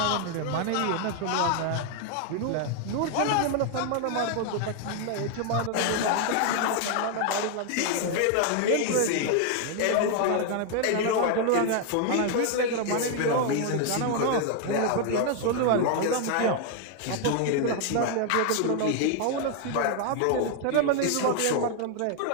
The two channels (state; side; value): different; both; correlation 0.00